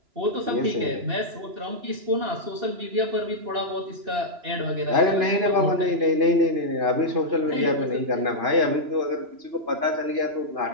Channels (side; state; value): left; late; 2.9 ms